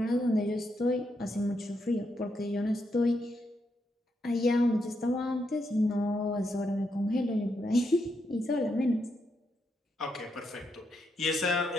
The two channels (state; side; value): normal; both; correlation 0.81